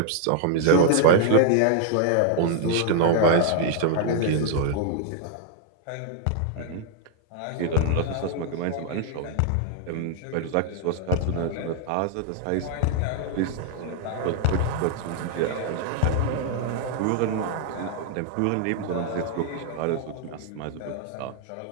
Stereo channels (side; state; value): both; different; correlation 0.00